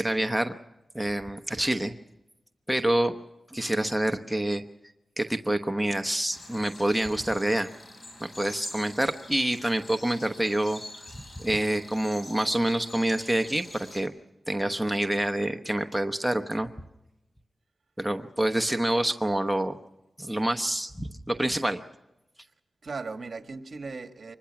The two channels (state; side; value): normal; both; correlation 0.98